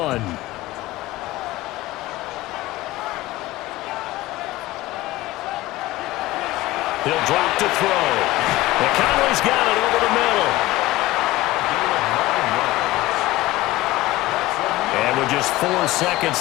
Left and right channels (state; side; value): quieter; right; 17.8 dB